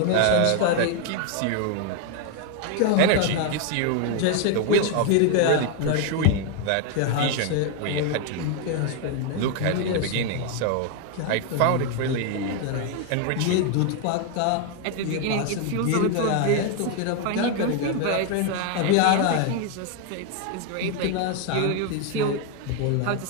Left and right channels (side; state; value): both; different; correlation 0.01